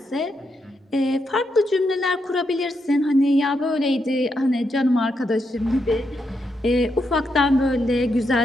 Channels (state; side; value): normal; both; correlation 0.82